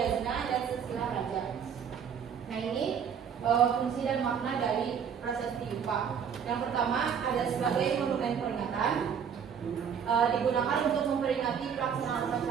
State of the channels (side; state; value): left; quieter; 7.5 dB